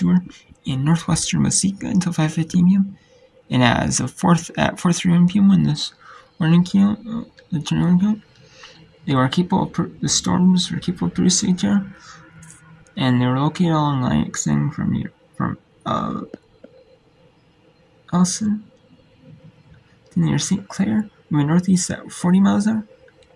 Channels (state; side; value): identical; both; correlation 1.00